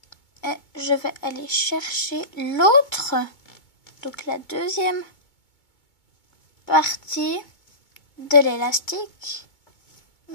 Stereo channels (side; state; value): right; late; 2.2 ms